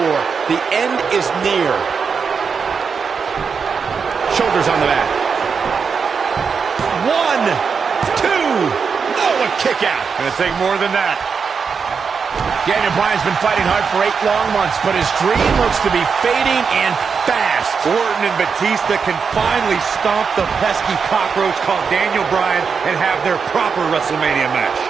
The end is near. Shoulders on the mat. 1, 2. Oh, a kick out. Gonna take more than that. Daniel Bryan's been fighting hard for 8 long months, but his dream looks to be fading and fast. Orton and Batista can finally stomp the pesky cockroach called Daniel Bryan and have their proper WrestleMania match.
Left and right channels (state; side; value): quieter; left; 5.8 dB